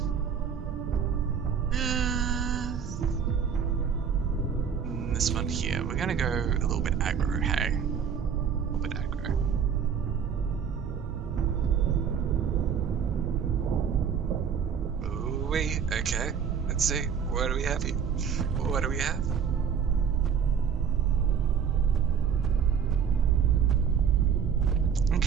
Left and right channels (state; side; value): quieter; left; 7.3 dB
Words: This one here. We're going to go a little bit aggro, hey? A little bit aggro. Ooh, okay. Let's see. What do we have here? What do we have?